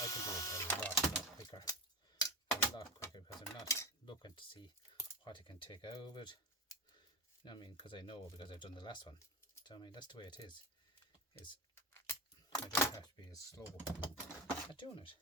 can do it a lot quicker because I'm not looking to see what I can take out of it. You know what I mean? Because I know, because I've done the last one. So I mean, that's the way it is. I don't have to be as slow at doing it.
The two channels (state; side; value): normal; both; correlation 0.23